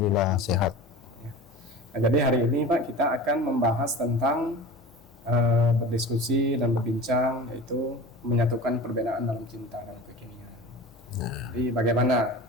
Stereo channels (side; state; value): both; normal; correlation 0.34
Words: sehat. Nah, jadi hari ini Pak kita akan membahas tentang berdiskusi dan berbincang, yaitu menyatukan perbedaan dalam cinta dan kekinian. Jadi bagaimana